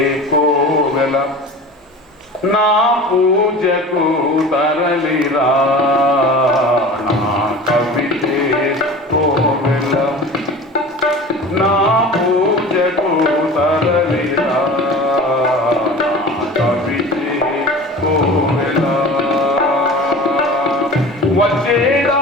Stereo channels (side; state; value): both; normal; correlation 0.37